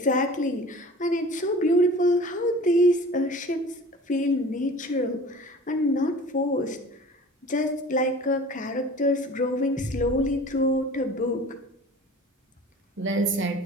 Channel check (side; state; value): both; normal; correlation 0.42